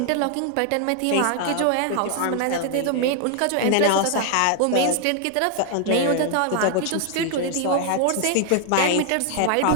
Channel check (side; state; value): both; different; correlation 0.00